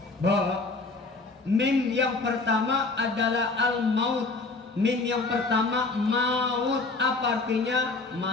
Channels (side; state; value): right; quieter; 3.7 dB